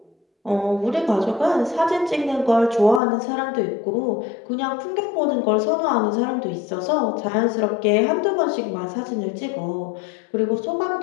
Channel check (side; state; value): right; drops out; at 3.0 s